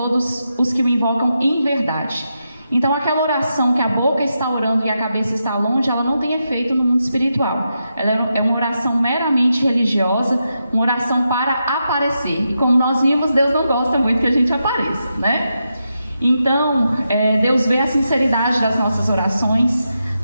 os que o invocam em verdade. Então, aquela oração que a boca está orando e a cabeça está longe, ela não tem efeito no mundo espiritual. Ela é uma oração meramente religiosa, uma oração para aparecer. E como nós vimos, Deus não gosta muito que a gente apareça, né? Então, Deus vê a sinceridade das nossas orações.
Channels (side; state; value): both; inverted; correlation -0.86